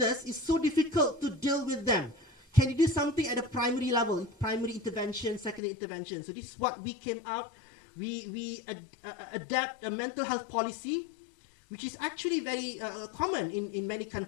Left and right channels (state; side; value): drops out; right; at 5.6 s